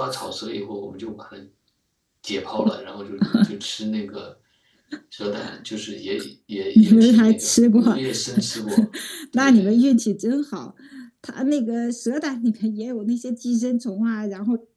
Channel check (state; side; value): identical; both; correlation 1.00